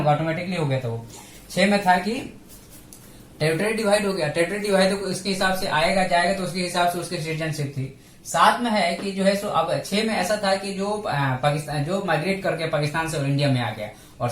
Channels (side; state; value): both; identical; correlation 1.00